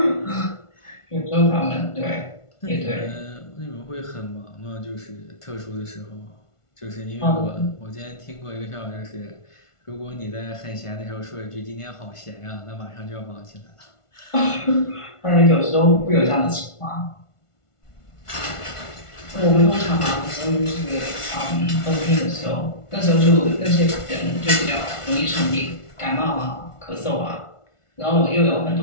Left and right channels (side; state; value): right; late; 1.5 ms